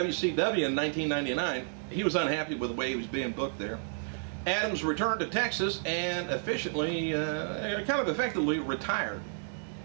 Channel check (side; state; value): left; silent; digital silence